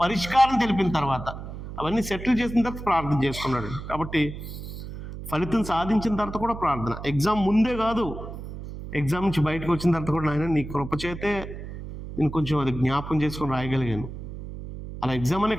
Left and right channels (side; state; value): right; noise; hum, 10 dB below the sound